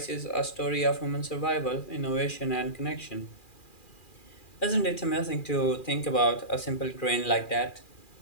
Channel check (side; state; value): right; late; 2.4 ms